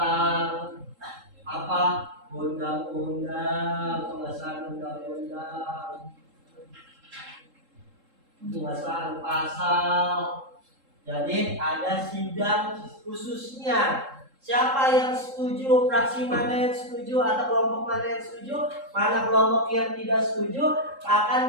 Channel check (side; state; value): left; late; 3.7 ms